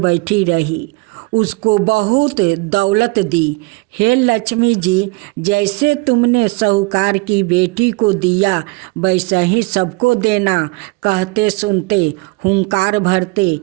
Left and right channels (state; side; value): quieter; left; 26.1 dB